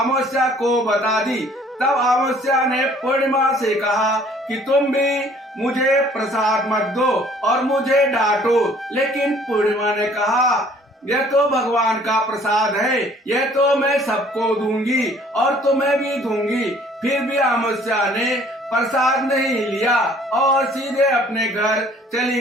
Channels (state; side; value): normal; both; correlation 0.56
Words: को बता दी। तब अमावस्या ने पूर्णिमा से कहा कि तुम भी मुझे प्रसाद मत दो और मुझे डांटो, लेकिन पूर्णिमा ने कहा, यह तो भगवान का प्रसाद है, यह तो मैं सबको दूंगी और तुम्हें भी दूंगी। फिर भी अमावस्या ने प्रसाद नहीं लिया और सीधे अपने घर चली